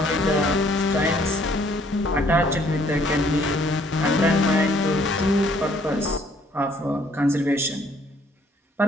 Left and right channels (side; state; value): both; normal; correlation 0.63